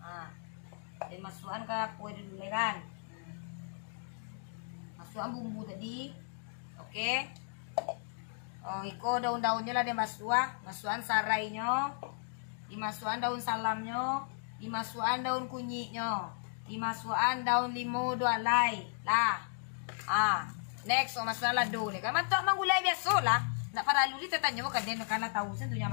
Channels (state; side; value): silent; right; digital silence